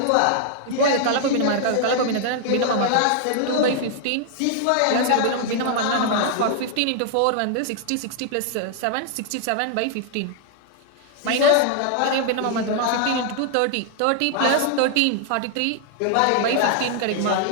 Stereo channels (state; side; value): different; both; correlation 0.00